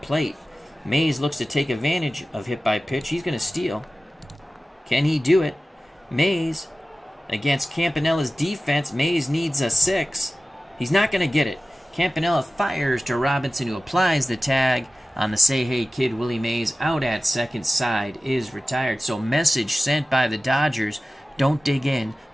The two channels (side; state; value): both; normal; correlation 0.96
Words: plate. Mays looks to take advantage of hit by pitch. He's going to steal. Can he do it? Mays, against Campanella's defense, Mays needs a 6. He's not going to get it. Campanella fires to Robinson, who applies the tag on the Say Hey Kid. Willie Mays out at second, side is retired. So message sent by the Dodgers, don't dig in